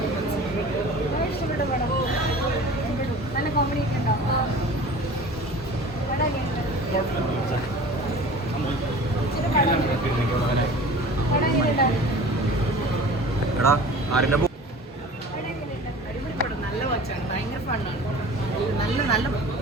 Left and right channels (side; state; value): both; normal; correlation 0.41